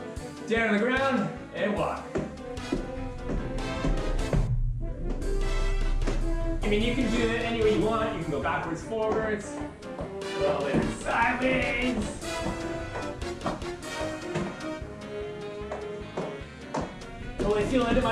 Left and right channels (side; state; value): both; identical; correlation 1.00